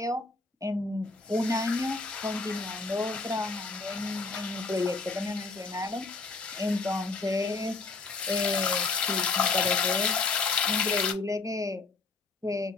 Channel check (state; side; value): quieter; right; 4.0 dB